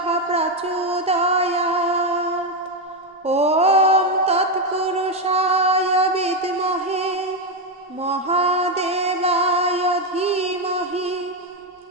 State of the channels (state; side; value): normal; both; correlation 0.07